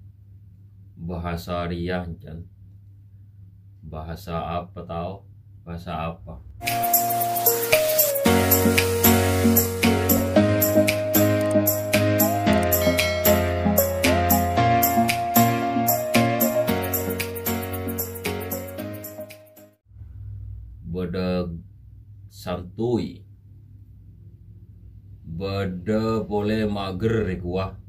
bahasa riang, bahasa apa tahu, bahasa apa. Beda santuy, beda boleh mager kuah,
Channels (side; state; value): both; identical; correlation 1.00